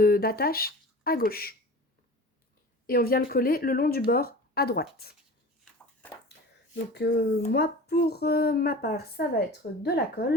à gauche. Et on vient le coller le long du bord à droite. Donc moi, pour ma part, ça va être de la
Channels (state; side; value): normal; both; correlation 0.38